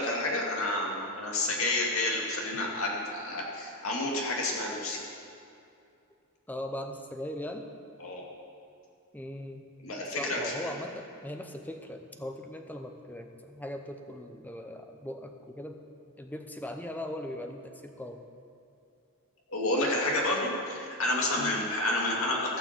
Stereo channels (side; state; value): both; normal; correlation 0.15